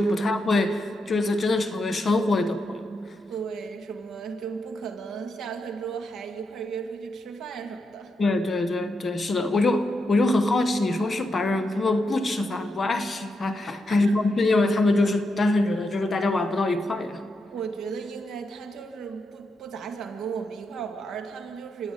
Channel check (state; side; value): normal; both; correlation 0.84